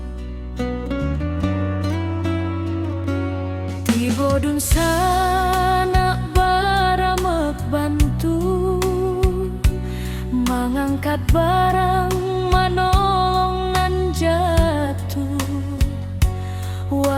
Tiba dun sana baramek bantu mengangkat barang manolong nan jatuh.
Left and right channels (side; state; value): both; identical; correlation 1.00